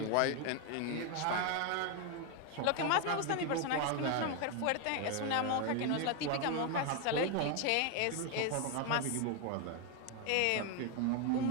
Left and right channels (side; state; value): both; different; correlation 0.01